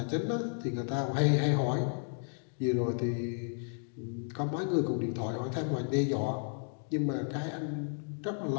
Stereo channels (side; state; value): right; silent; 56 dB below the other